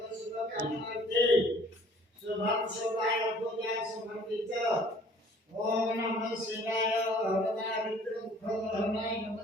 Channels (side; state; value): both; normal; correlation 0.54